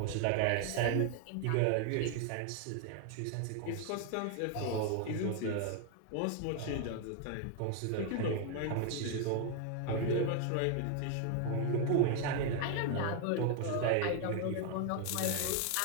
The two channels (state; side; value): different; both; correlation 0.01